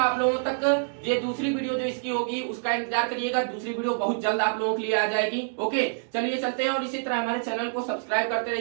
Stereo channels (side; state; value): left; silent; digital silence